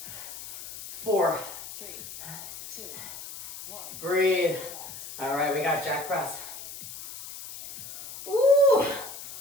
4, 3, 2, 1. breathe. All right, we got jack press. Ooh,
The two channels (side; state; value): left; noise; hiss, 12 dB below the sound